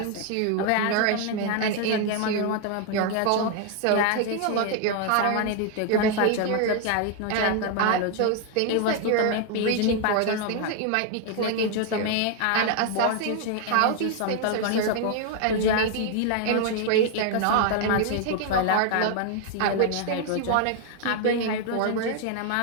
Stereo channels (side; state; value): both; different; correlation 0.00